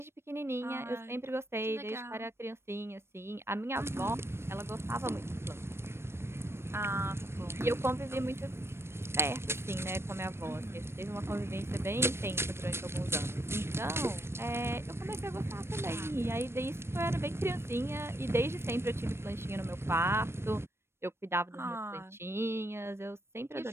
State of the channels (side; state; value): left; late; 0.12 ms